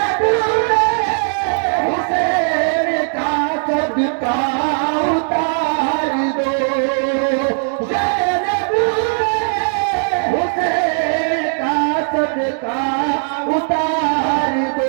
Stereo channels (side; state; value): left; silent; digital silence